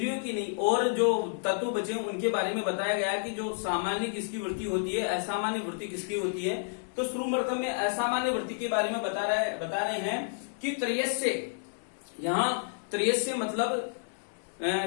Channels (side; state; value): right; silent; digital silence